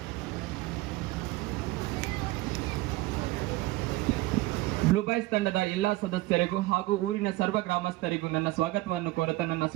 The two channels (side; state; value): left; quieter; 19.2 dB